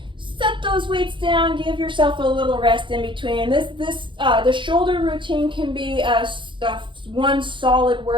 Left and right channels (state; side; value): late; left; 0.24 ms